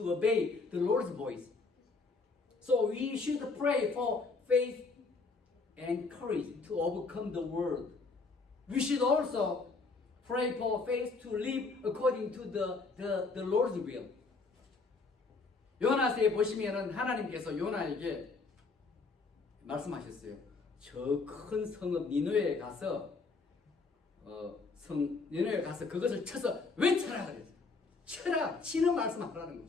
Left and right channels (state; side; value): quieter; right; 4.1 dB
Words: obey the Lord's voice. So we should pray for faith and courage to overcome the world. We should also pray for faith to live according to the Lord's will. 요나서에 보시면은 하나님께서 요나에게 말씀하셨어요. 저 큰 성읍 니느웨에 가서 니느웨에 가서 그것을 쳐서 외쳐라 그랬어요. 쳐라, 치는 말씀하라는